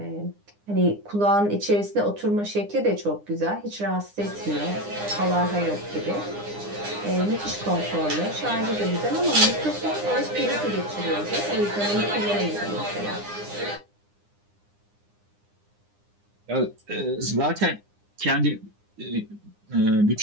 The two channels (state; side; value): late; left; 9.8 ms